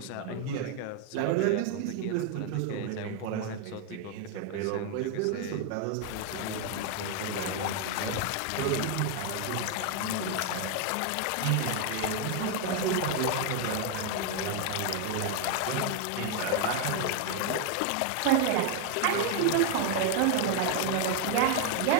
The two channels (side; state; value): both; different; correlation 0.01